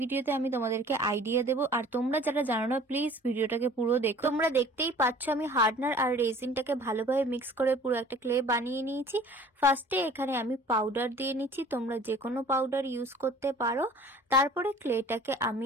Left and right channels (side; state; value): both; normal; correlation 0.48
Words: আমি তোমাদেরকে আইডিয়া দেবো, আর তোমরা যারা জানো না প্লিজ ভিডিওটাকে পুরো দেখো। তোমরা দেখতেই পাচ্ছ আমি হার্ডনার আর রেজিনটাকে ভালোভাবে মিক্স করে পুরো একটা ক্লে বানিয়ে নিয়েছি। ফার্স্টে এখানে আমি পাউডার দিয়ে নিচ্ছি, তোমরা যে কোনো পাউডার ইউজ করতে পারো। তারপরে ক্লেটাকে